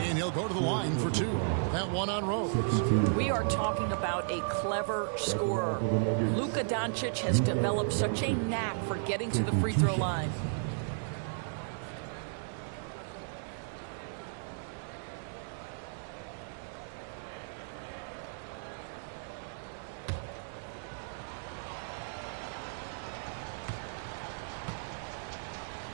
he'll go to the line for 2. That one on Rose. We are talking about a clever scorer. Luka Doncic has developed such a knack for getting to the free throw line.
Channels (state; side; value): silent; left; digital silence